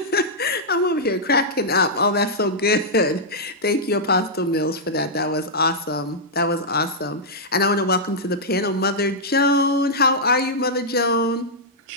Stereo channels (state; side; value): normal; both; correlation -0.08